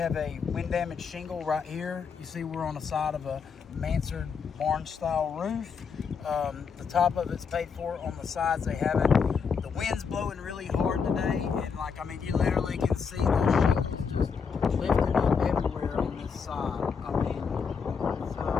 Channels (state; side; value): quieter; right; 6.0 dB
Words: a wind damaged shingle right here. You see we're on the side of a mansard barn style roof. The top of it's paid for. On the sides they haven't. The wind's blowing really hard today, and you literally can see the shingles just lifting up everywhere on this side.